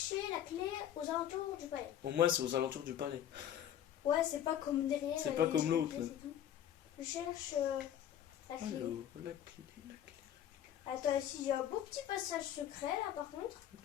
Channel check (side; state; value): right; quieter; 10.5 dB